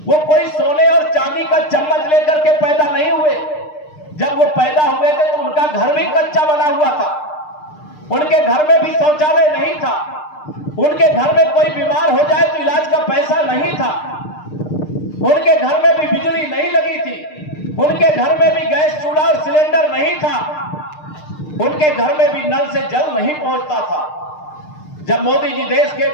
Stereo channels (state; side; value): late; right; 6.6 ms